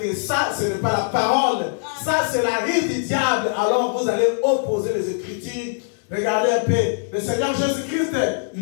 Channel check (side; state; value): right; silent; digital silence